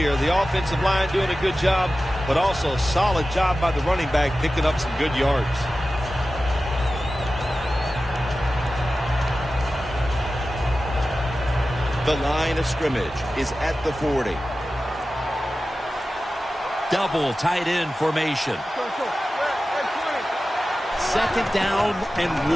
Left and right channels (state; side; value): normal; both; correlation 0.94